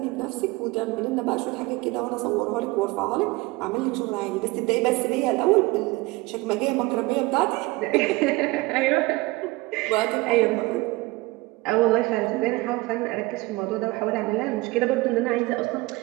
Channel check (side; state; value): left; quieter; 22.2 dB